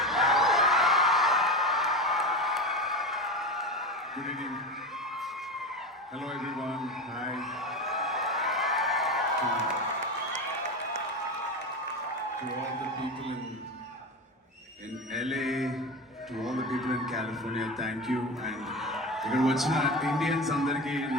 Good evening. Hello everyone. Hi. To all the people in LA, to all the people in California, thank you. And ఇక్కడ వచ్చిన Indians అందరికీ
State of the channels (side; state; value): both; normal; correlation 0.24